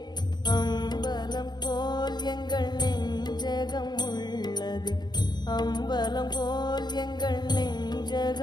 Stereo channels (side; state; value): right; late; 0.21 ms